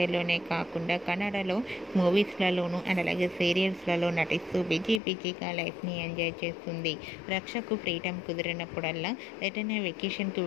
కాకుండా కన్నడలో మూవీస్లలోనూ అండ్ అలాగే సీరియల్స్లలో నటిస్తూ బిజీగా లైఫ్ని ఎంజాయ్ చేస్తుంది. రక్షకు ఫ్రీడమ్ కుదిరినప్పుడల్లా ఎటైనా వెకేషన్కి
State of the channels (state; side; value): drops out; right; at 5.0 s